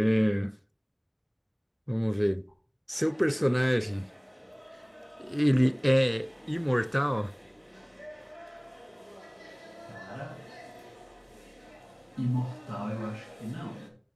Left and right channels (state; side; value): identical; both; correlation 1.00